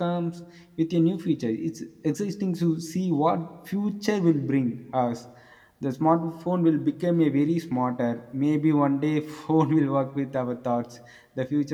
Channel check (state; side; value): identical; both; correlation 1.00